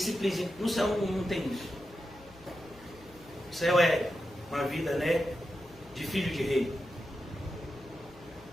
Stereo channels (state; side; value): noise; left; hum, 22 dB below the sound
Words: No céu não tem isso. O céu é uma vida, né, de filho de rei.